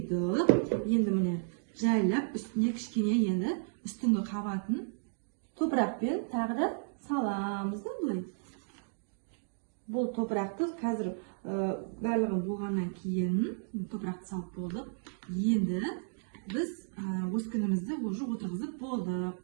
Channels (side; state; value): left; silent; digital silence